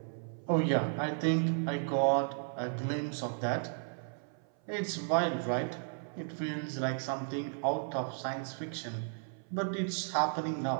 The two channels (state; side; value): silent; left; 55 dB below the other